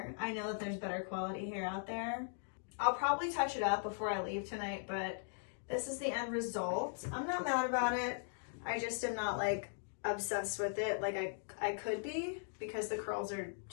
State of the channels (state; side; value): silent; right; digital silence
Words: I know that there's better quality hair out there. I'll probably touch it up before I leave tonight, but this is the end result. I'm not mad about it. I just am not like obsessed with it like I could be, because the curls are